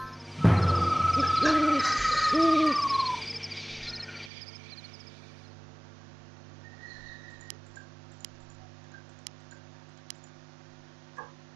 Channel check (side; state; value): left; drops out; at 4.3 s